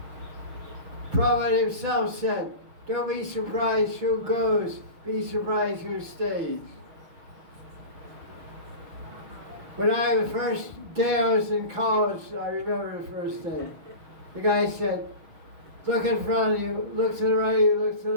Prabhupada himself said, don't be surprised who goes, be surprised who stays. When the first day I was in college, I remember the first day, the guy said, look in front of you, look to the right of you, look to the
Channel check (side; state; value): left; late; 6.4 ms